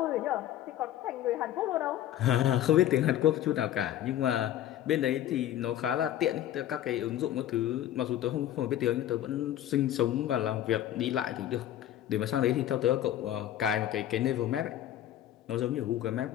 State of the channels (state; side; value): quieter; right; 12.2 dB